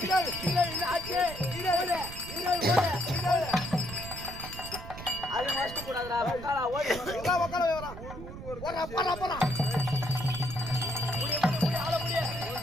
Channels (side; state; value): right; noise; rumble, 11 dB below the sound